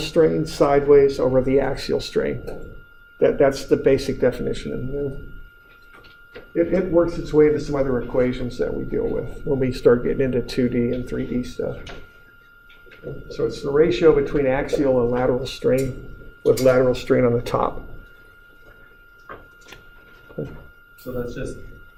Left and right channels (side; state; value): both; identical; correlation 1.00